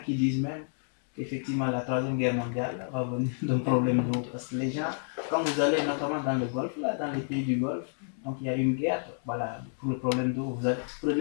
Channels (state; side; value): silent; right; digital silence